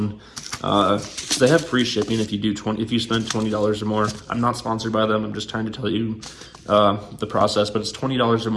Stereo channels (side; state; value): both; identical; correlation 1.00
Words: They have free shipping if you spend $20 or more. I'm not sponsored by them. I'm just trying to tell you the process, but it's $20 or